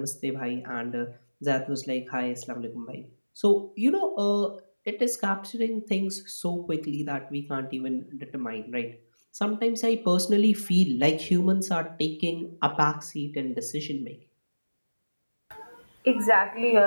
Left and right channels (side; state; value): both; inverted; correlation -1.00